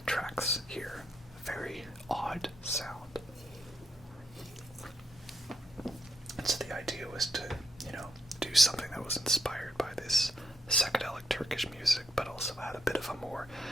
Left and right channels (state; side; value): normal; both; correlation 0.79